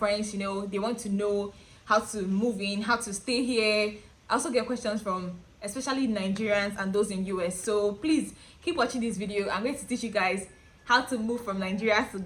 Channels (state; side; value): identical; both; correlation 1.00